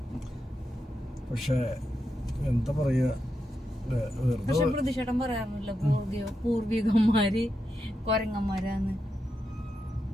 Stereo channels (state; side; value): normal; both; correlation 0.86